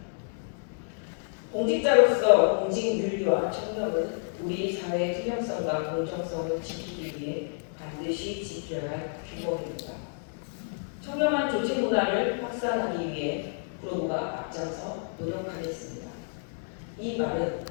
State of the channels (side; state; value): right; silent; digital silence